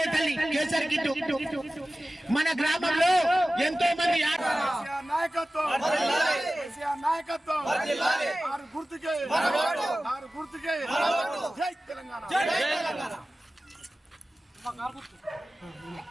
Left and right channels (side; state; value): both; normal; correlation 0.96